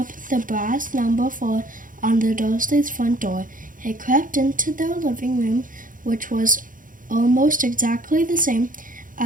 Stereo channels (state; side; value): late; left; 0.39 ms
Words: the brass number 4 on the Dursleys' front door. He crept into their living room, which was almost exactly the same